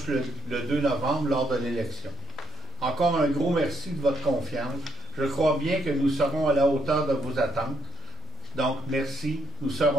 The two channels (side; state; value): both; normal; correlation 0.74